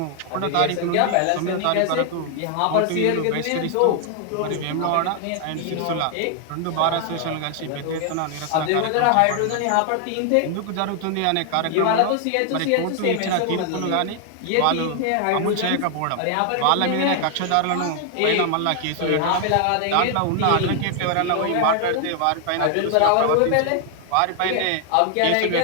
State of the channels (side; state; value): both; different; correlation 0.00